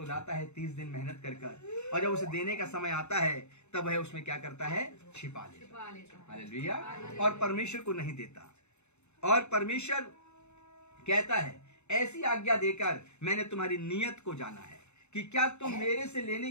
लाता है 30 दिन मेहनत कर, और जब उसे देने का समय आता है तब वह उसमें क्या करता है? छिपा लेता। हालेलुया। और परमेश्वर को नहीं देता। और परमेश्वर कहता है ऐसी आज्ञा देकर मैंने तुम्हारी नियत को जाना है कि क्या तुम मेरे से लेने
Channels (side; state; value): right; late; 0.82 ms